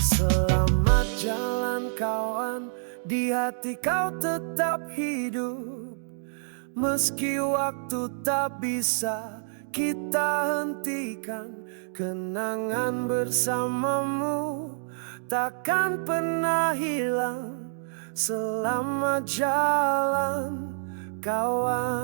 jalan kawan, di hati kau tetap hidup. Meski waktu tak bisa kita hentikan, kenangan bersamamu takkan pernah hilang. Selamat jalan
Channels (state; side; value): silent; left; digital silence